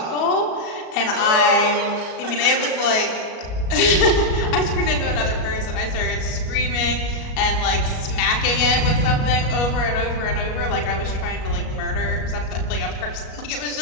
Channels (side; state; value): right; late; 37 ms